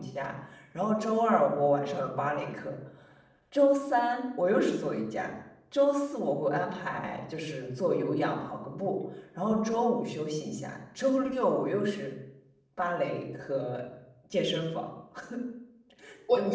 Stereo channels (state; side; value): identical; both; correlation 1.00